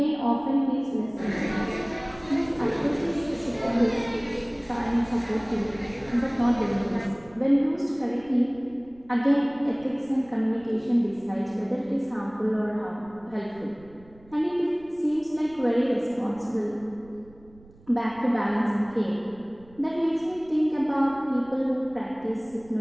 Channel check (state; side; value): noise; right; rumble, 25 dB below the sound